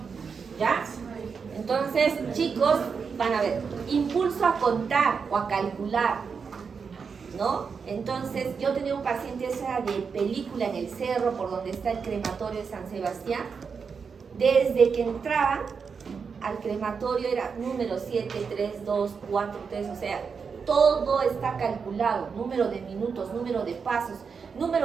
¿ya? Entonces, chicos, van a ver, impulso a contar o a calcular, ¿no? Entonces, yo tenía un paciente esa de película en el cerro, por donde está el crematorio de San Sebastián. Desde que entraban al crematorio era número 7, 3, 2, 4, 3, o sea, todo está calculado, número de minutos, número de pasos,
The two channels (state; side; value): quieter; left; 5.7 dB